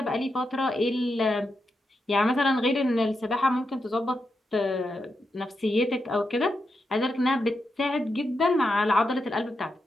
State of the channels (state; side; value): normal; both; correlation 0.86